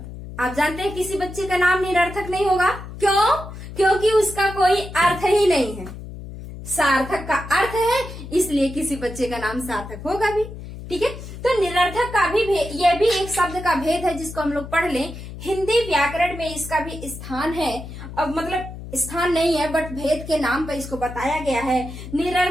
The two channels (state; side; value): noise; left; hum, 12 dB below the sound